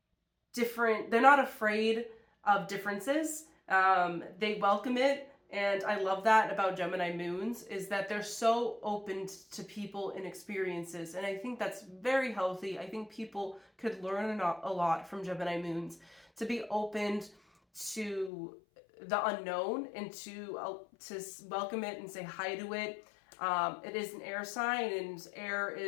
they're not afraid of differences. They welcome it. And I love that about Gemini moons, is that they're so open to people and experiences. And I think that's very healthy. I think people could learn a lot from Gemini moons, to be open to the unknown and to welcome it and say hi to it. It is an air sign, and air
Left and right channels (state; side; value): drops out; right; at 18.3 s